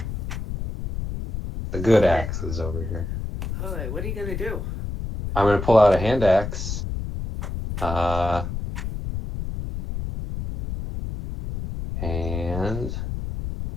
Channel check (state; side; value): noise; left; rumble, 5 dB below the sound